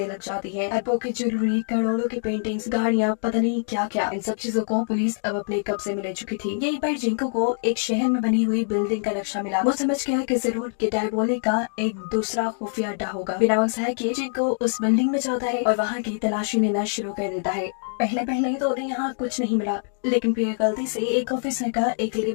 लग जाती है। एप्पो की ज्वेलरी, करोड़ों की पेंटिंग्स, गाड़ियाँ, पता नहीं क्या क्या। इन सब चीजों को पुलिस अब अपने कब्जे में ले चुकी थी। यहीं पर जिंको को एक शहर में बनी हुई बिल्डिंग का नक्शा मिला। वो समझ गया कि जरूर कि डायबोलिक का एक दूसरा खुफिया अड्डा होगा। बिना वक्त है कि जिंको उस बिल्डिंग में जाता है और वहाँ की तलाशी लेना शुरू कर देता है। पहले पहले तो उन्हें यहाँ कुछ नहीं मिला, लेकिन फिर गलती से एक ऑफिसर का एक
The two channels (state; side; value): silent; right; digital silence